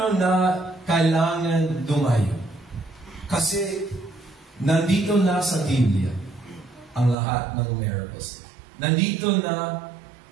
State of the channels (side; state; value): left; drops out; at 7.2 s